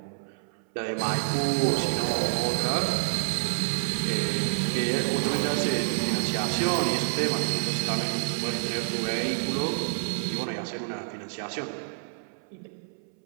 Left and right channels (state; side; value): silent; left; 59 dB below the other